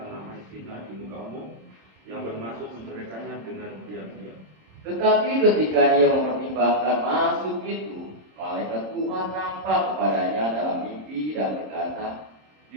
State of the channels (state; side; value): late; left; 26 ms